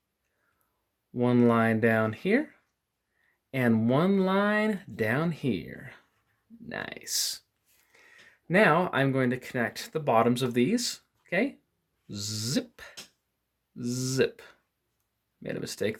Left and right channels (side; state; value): both; identical; correlation 1.00